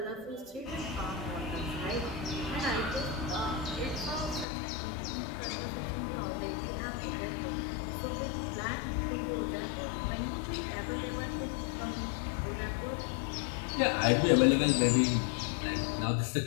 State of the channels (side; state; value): right; drops out; at 4.5 s